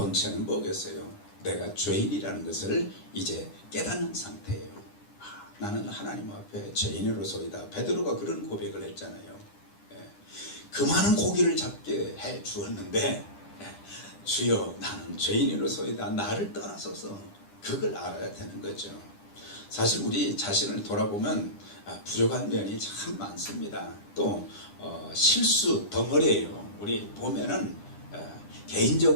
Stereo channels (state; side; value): late; right; 10 ms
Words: 뭐겠어요? 내가 죄인이라는 것을 이제 깨닫는 상태예요. 나는 하나님 앞에 죄인으로서이다. 베드로가 그런 고백을 했잖아요. 그 많은 고기를 잡게 해 주었는데 주여 나는 죄인으로서이다 나를 떠나소서 그걸 알아야 되는 거죠. 사실 우리 자신을 돌아보면 부족한 면이 참 많습니다. 또 실수 덩어리예요. 우리 보면은